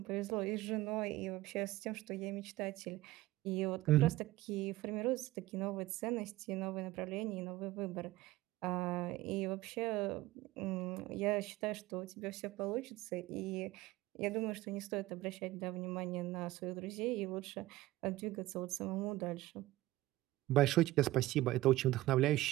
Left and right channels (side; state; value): left; quieter; 17.4 dB